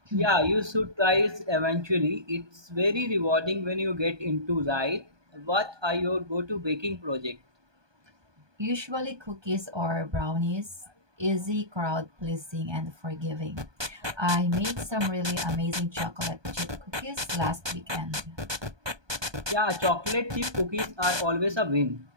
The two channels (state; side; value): late; left; 1.2 ms